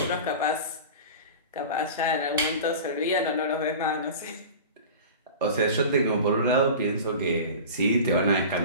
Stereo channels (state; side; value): inverted; both; correlation -0.35